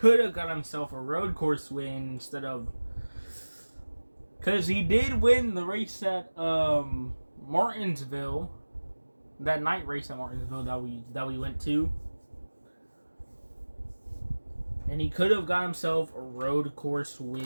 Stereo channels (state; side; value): inverted; both; correlation -1.00